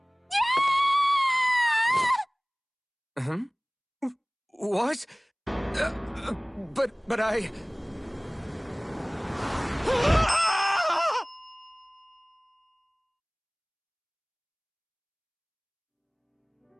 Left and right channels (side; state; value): both; identical; correlation 1.00